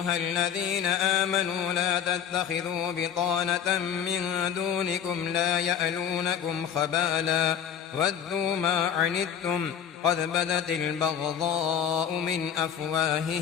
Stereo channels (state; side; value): quieter; right; 8.6 dB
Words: الذين آمنوا لا تتخذوا بطانة من دونكم لا يألونكم خبالا ودوا ما عنتم قد بدت البغضاء من